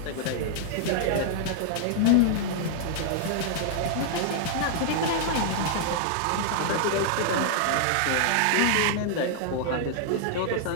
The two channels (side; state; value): both; different; correlation -0.01